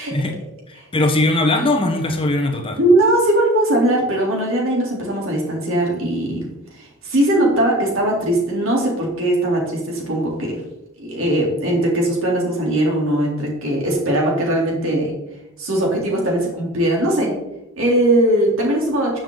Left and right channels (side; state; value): both; normal; correlation 0.41